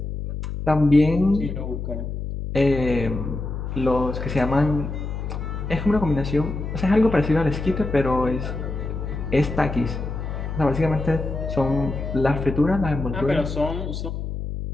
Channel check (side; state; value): left; noise; hum, 5 dB below the sound